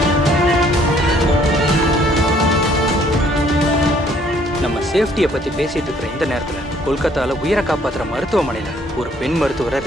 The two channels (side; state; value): both; normal; correlation 0.62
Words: நம்ம சேஃப்டியை பத்தி பேசிட்டு இருக்கிற இந்த நேரத்துல கொல்கத்தால உயிரை காப்பாத்துற மருத்துவமனையில ஒரு பெண் மருத்துவரை